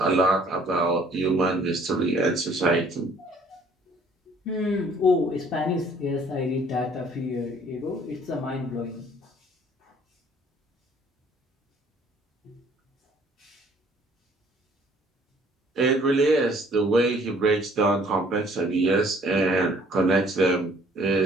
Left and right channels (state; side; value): normal; both; correlation 0.58